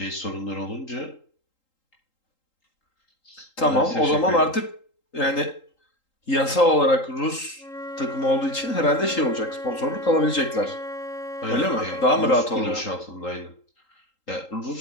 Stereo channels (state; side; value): late; right; 3.8 ms